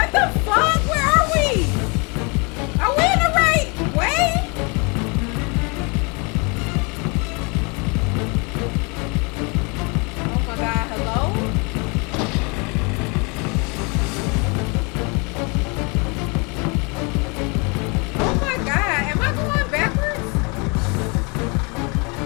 the fuck? Where are we? Are we in the right way? Oh my god, hello? Oh my god, am I going backwards?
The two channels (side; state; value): right; quieter; 31.2 dB